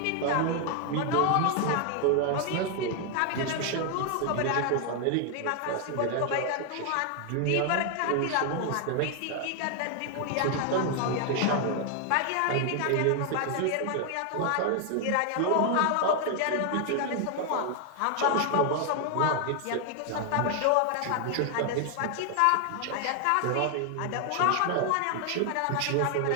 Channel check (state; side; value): different; both; correlation 0.00